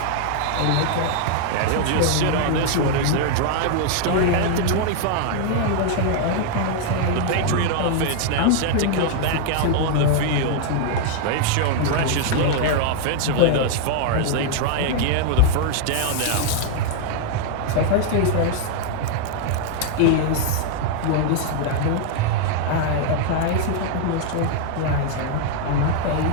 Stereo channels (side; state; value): both; different; correlation 0.00